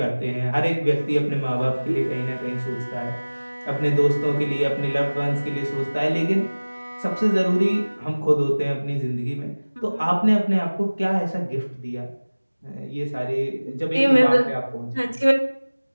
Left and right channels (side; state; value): both; inverted; correlation -1.00